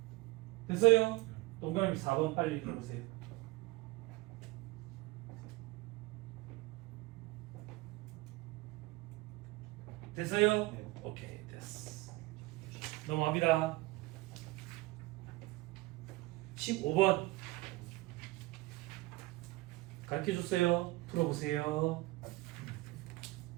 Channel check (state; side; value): quieter; left; 20.5 dB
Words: 됐어요? 동그라미 4번 빨리 읽어보세요. 됐어요? 네. 오케이, 됐어. 넘어갑니다. 15번 가르쳐줬어요. 풀어보세요.